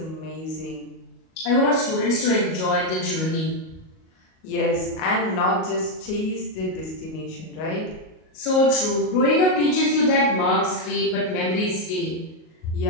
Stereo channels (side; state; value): right; late; 38 ms